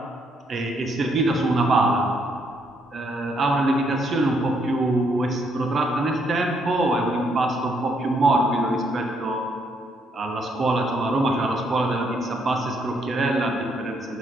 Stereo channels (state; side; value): normal; both; correlation 0.73